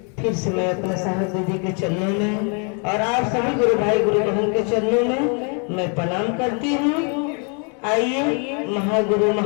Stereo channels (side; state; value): right; quieter; 37.8 dB